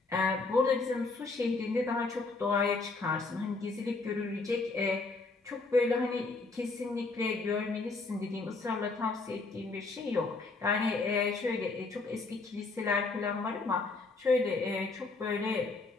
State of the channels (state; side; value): quieter; right; 3.7 dB